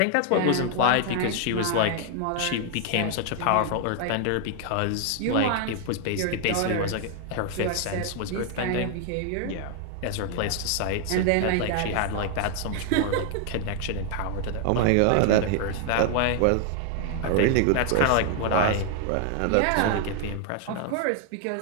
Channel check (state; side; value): different; both; correlation 0.00